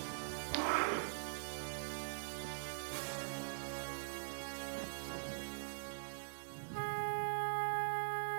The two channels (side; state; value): left; silent; digital silence